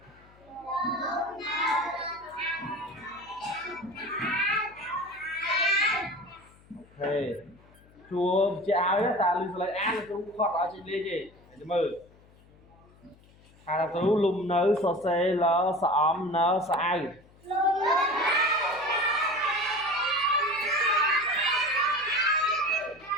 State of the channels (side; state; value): left; noise; hum, 27 dB below the sound